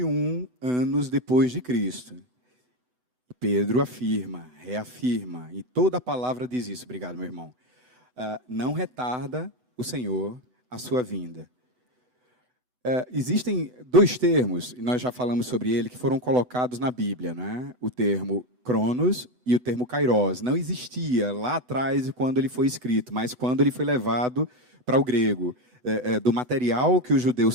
anos depois de Cristo. Pedro afirma, reafirma, e toda a palavra diz isso. Obrigado, meu irmão. Não retarda o Senhor a sua vinda. Existem 2 termos, e nós já falamos sobre ele, que foram colocados na Bíblia, né? O termo Cronos e o termo Kairos. Não existia lá atrás quando ele foi escrito, mas quando ele foi levado para o grego, do material que os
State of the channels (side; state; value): left; late; 8.0 ms